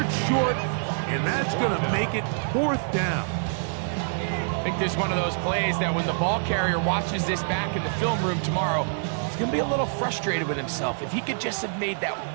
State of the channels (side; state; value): left; silent; digital silence